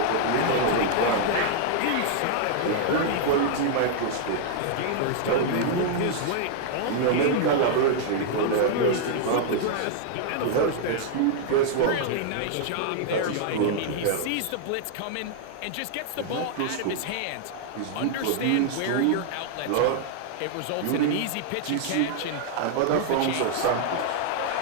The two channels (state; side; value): different; both; correlation -0.01